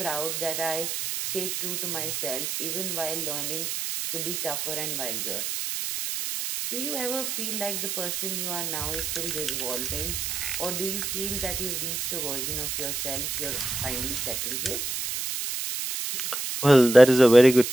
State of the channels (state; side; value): noise; right; hiss, 3 dB below the sound